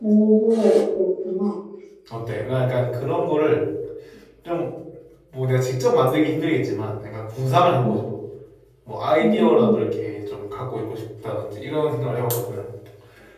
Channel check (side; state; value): both; identical; correlation 1.00